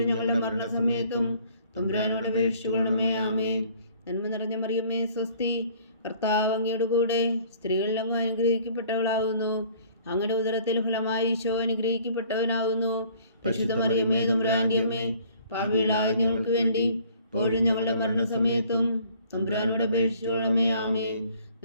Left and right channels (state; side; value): inverted; both; correlation -0.56